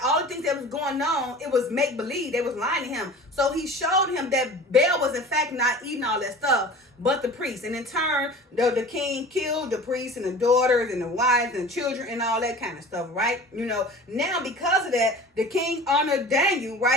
all the things that was going on, it was make-believe. They was lying to him. So he showed him that Baal was in fact not eating all that stuff, but the priests. And in turn, the king killed the priests and the daughters and the wives and children and all that kind of stuff, right? Now because of that, the king honored Daniel,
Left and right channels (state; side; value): normal; both; correlation 0.40